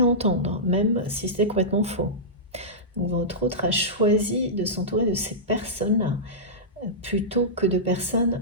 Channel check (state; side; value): normal; both; correlation -0.14